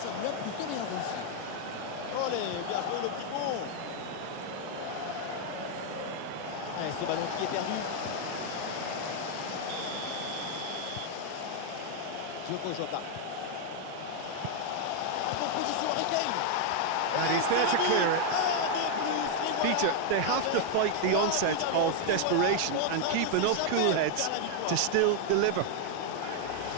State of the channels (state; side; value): different; both; correlation 0.00